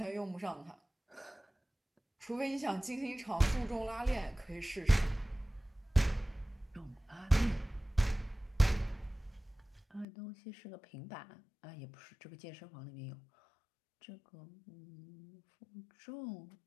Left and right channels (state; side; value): drops out; right; at 10.1 s